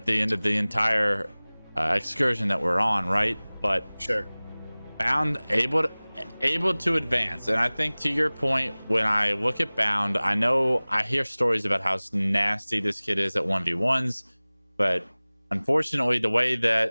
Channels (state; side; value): inverted; both; correlation -1.00